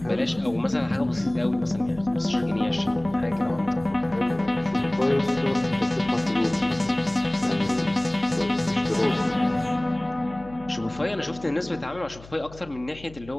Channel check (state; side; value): noise; left; hum, 19 dB below the sound